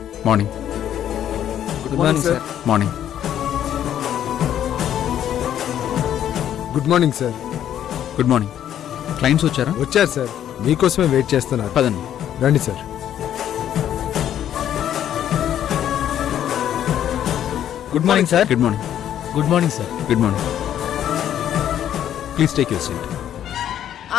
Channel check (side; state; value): right; quieter; 10.6 dB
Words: Morning. Good morning sir. Morning. Good morning sir. Good morning. Clients వచ్చారా? వచ్చారు సార్, మీకోసమే వెయిట్ చేస్తున్నారు. పదండి. రండి sir. Good morning sir. Good morning. Good morning sir. Good morning. Please take your seat.